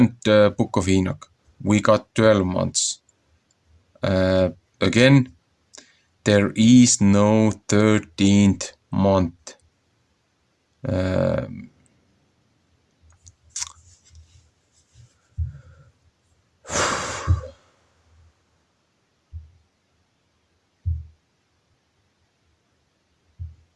book of Enoch, we got 12 months. Again, there is no 13th month.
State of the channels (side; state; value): both; identical; correlation 1.00